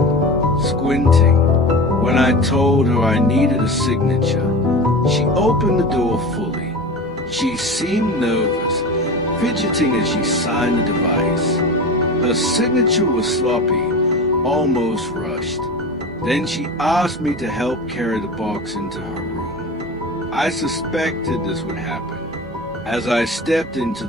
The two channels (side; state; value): both; normal; correlation 0.30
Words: squinting. When I told her I needed a signature, she opened the door fully. She seemed nervous, fidgeting as she signed the device. Her signature was sloppy, almost rushed. Then she asked me to help carry the box into her room. I suspected this would happen. As I stepped into